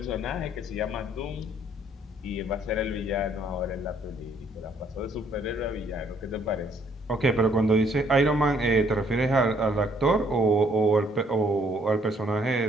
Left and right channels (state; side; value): normal; both; correlation 0.65